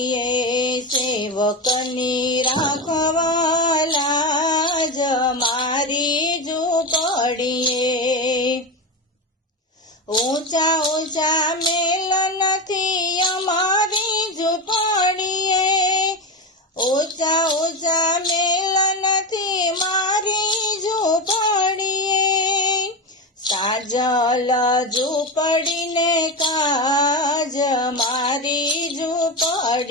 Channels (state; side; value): normal; both; correlation 0.17